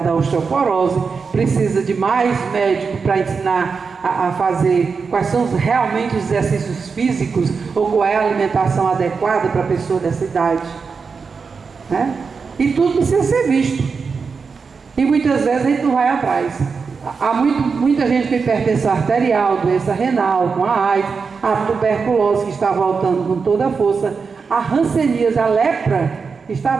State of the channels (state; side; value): quieter; left; 5.2 dB